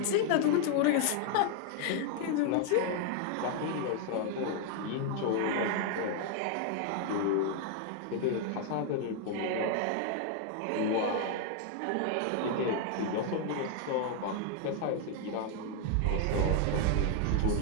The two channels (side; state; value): both; different; correlation 0.00